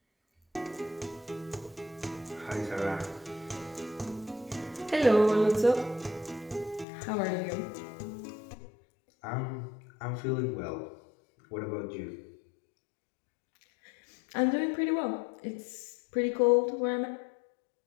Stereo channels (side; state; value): right; drops out; at 6.9 s